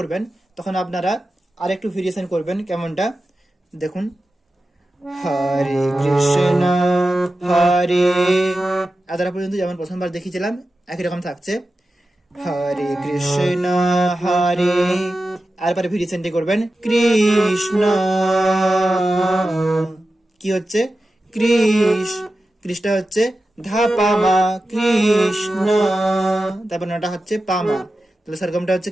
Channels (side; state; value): both; normal; correlation 0.93